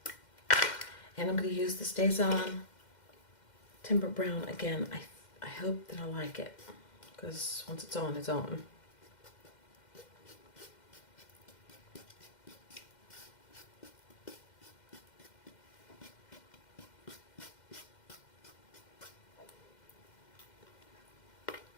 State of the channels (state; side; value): late; right; 2.1 ms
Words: And I'm going to use the Stays On Timber Brown again. I hope that I like it, because once it's on, it's on.